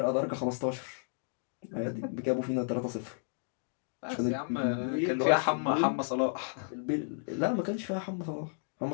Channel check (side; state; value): right; silent; digital silence